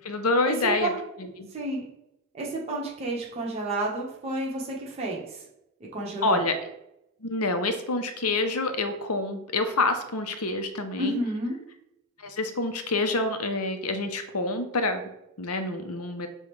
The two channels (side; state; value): both; normal; correlation -0.01